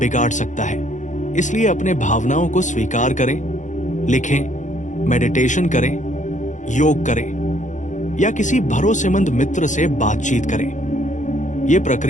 सकता है। इसलिए अपने भावनाओं को स्वीकार करें, लिखें, मेडिटेशन करें, योग करें या किसी भरोसेमंद मित्र से बातचीत करें। यह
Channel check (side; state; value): right; late; 0.36 ms